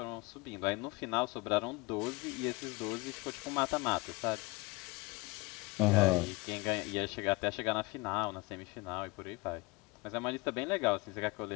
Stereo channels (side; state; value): right; quieter; 24.7 dB